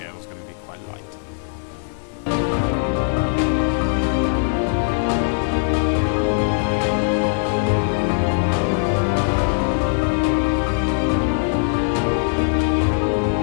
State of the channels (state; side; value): silent; right; 65 dB below the other